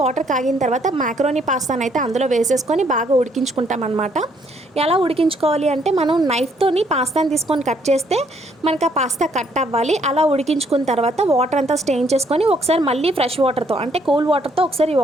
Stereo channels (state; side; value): normal; both; correlation 0.68